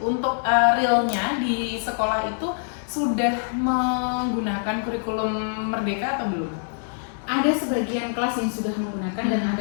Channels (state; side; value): silent; right; digital silence